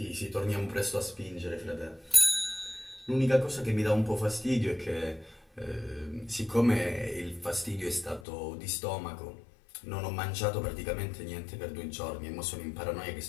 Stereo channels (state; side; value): drops out; right; at 8.2 s